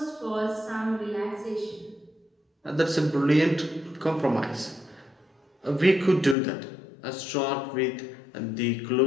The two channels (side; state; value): right; drops out; at 6.4 s